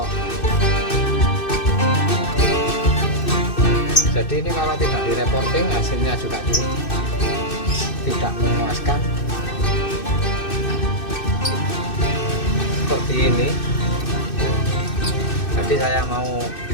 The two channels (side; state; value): right; late; 2.6 ms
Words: Jadi ini kalau tidak direporting hasilnya juga tidak memuaskan seperti ini. Jadi saya mau